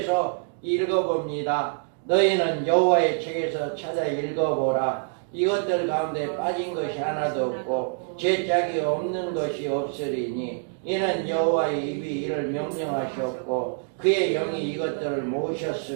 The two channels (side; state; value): left; silent; digital silence